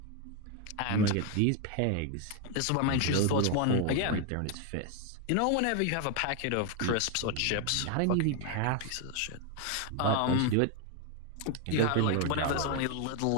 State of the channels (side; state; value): both; different; correlation 0.01